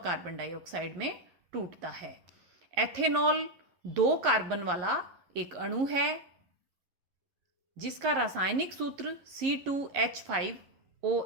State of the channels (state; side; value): late; left; 11 ms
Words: डाइऑक्साइड में टूटता है। एथेनॉल 2 कार्बन वाला एक अणु है जिसका रासायनिक सूत्र